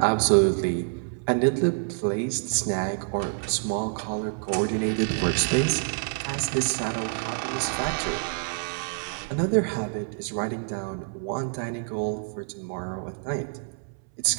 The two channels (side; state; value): left; silent; 60 dB below the other